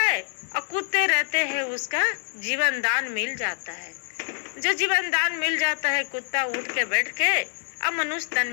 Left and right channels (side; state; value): right; silent; digital silence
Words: और कुत्ते रहते हैं, उसका जीवन दान मिल जाता है। जो जीवन दान मिल जाता है, कुत्ता उठ के बैठ के अब मनुष्य तन